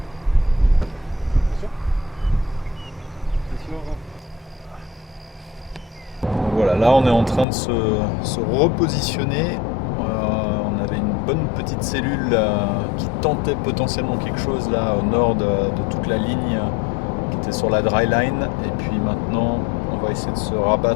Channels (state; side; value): drops out; right; at 7.5 s